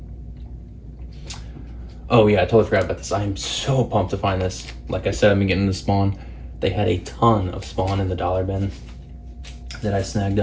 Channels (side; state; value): both; identical; correlation 1.00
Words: Oh yeah, I totally forgot about this. I am so pumped to find this. Like I said, I've been getting the Spawn. They had a ton of Spawn in the dollar bin that I snagged